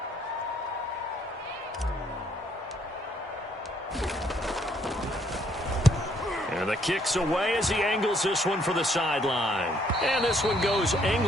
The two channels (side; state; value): both; normal; correlation 0.68